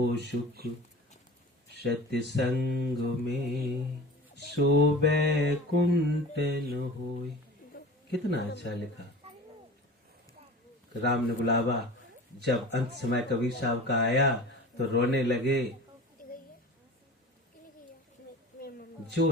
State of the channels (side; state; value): both; normal; correlation 0.38